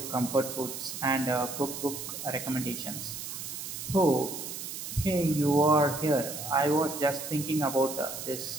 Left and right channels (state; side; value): noise; right; hiss, 7 dB below the sound